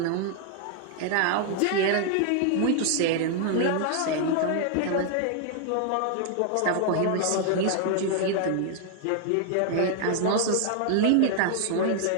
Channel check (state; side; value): different; both; correlation 0.00